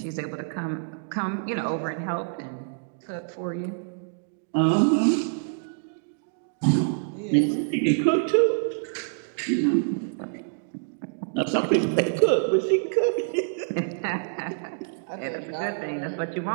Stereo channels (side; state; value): left; silent; digital silence